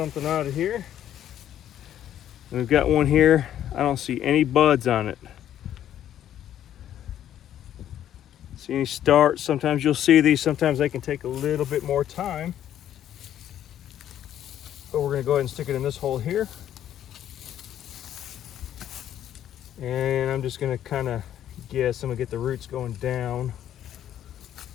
out of here. And we've got one here. I don't see any buds on it. See any starts? Sometimes you'll see these. Sometimes they can take a little bit more time. But we're gonna go ahead and stick it in this hole here. And I'm just gonna kind of guess, I'm gonna get the roots going down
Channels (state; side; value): quieter; right; 11.0 dB